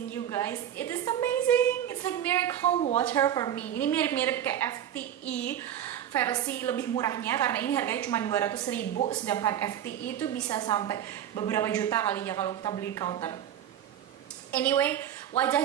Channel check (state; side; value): quieter; left; 10.5 dB